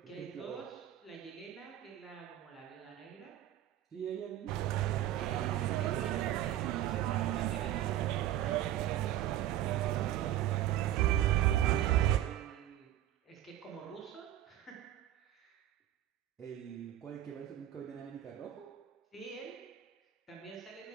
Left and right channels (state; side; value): quieter; left; 12.8 dB